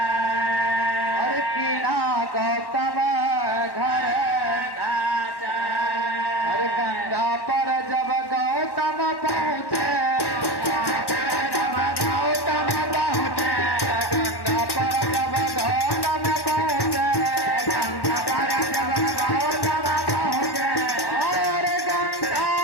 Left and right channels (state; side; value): late; right; 1.1 ms